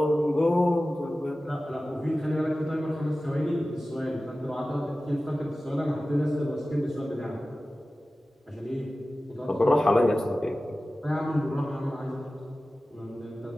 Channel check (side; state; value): both; normal; correlation 0.96